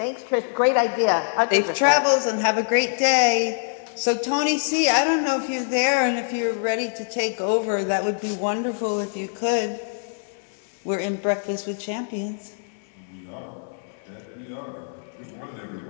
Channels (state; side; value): silent; right; 62 dB below the other